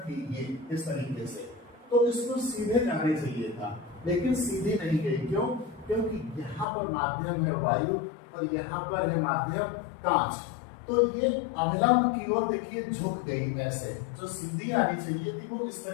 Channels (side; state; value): right; drops out; at 6.7 s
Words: ये इस तरीके से, तो इसको सीधे जाने चाहिए था, लेकिन सीधे नहीं गई। क्यों? क्योंकि यहाँ पर माध्यम है वायु और यहाँ पर है माध्यम कांच, तो ये अविलंब की ओर देखिए झुक गई। ऐसे जो सीधी आनी चाहिए थी वो इस